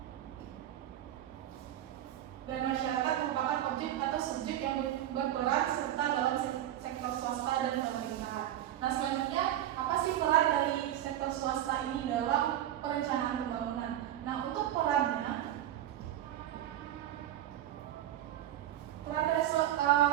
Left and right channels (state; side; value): quieter; left; 12.3 dB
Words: Dan masyarakat merupakan objek atau subjek yang berperan serta dalam sektor swasta dan pemerintahan. Nah, selanjutnya apa sih peran dari sektor swasta ini dalam perencanaan pembangunan? Nah, untuk perannya, peran dari